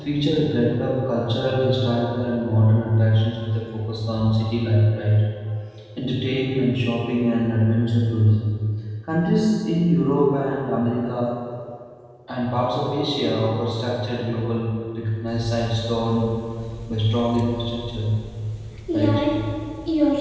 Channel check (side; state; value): both; identical; correlation 1.00